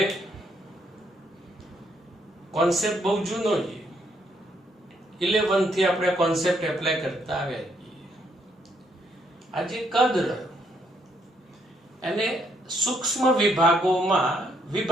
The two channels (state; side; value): normal; both; correlation 0.73